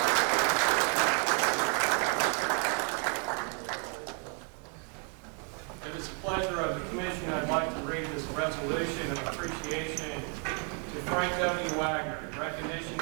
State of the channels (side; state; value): left; quieter; 39.7 dB